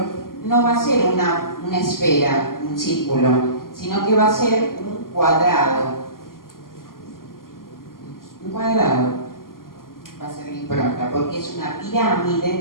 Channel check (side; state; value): right; late; 0.91 ms